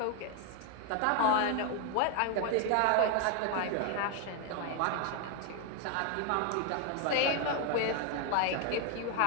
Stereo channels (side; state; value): both; different; correlation 0.01